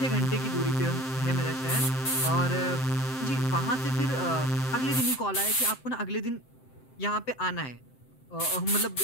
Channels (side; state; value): right; late; 7.7 ms